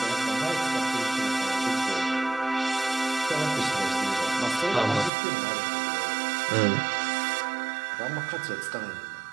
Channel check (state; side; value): drops out; left; at 5.1 s